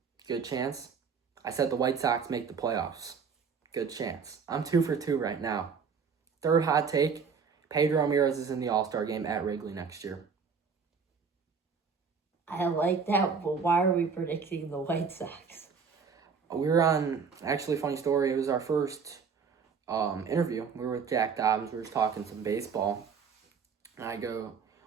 Good chance. I said the White Sox make the playoffs. Good chance. I'm 2 for 2 right now. 3rd hot take, Pedro Ramirez is in the All-Star game at Wrigley next year. I like that, but why are we predicting the White Sox? We were on, actually, funny story, it was our first interview. We were with Jack Dobbins. We were just talking some baseball. And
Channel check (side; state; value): left; quieter; 5.8 dB